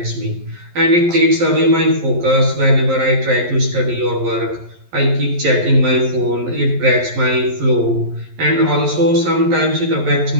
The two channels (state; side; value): late; left; 11 ms